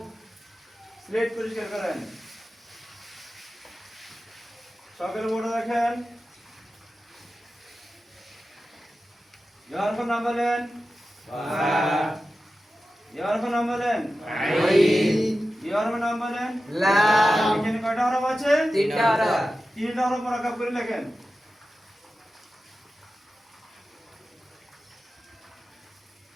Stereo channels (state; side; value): normal; both; correlation 0.93